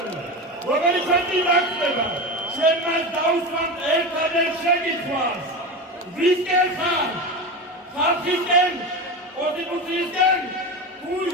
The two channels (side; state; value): both; normal; correlation 0.23